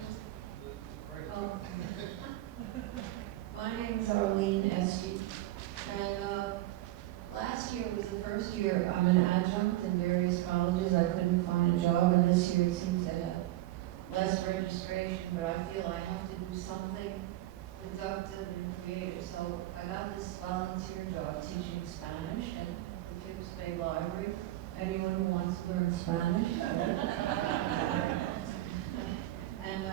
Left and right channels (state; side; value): quieter; left; 16.0 dB